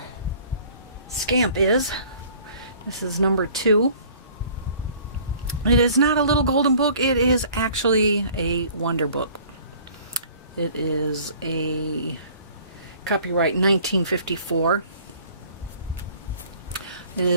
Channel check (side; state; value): both; inverted; correlation -0.52